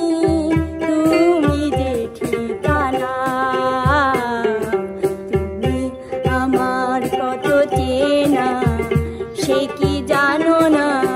তুমি যে ঠিকানা, তুমি আমার কত চেনা সে কি জানো না,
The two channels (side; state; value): both; identical; correlation 1.00